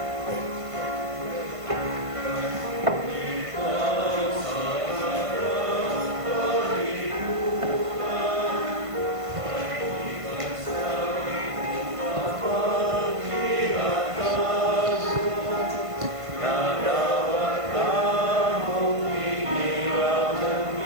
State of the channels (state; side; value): late; left; 1.5 ms